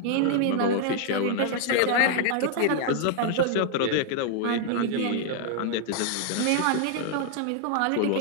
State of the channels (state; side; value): different; both; correlation 0.00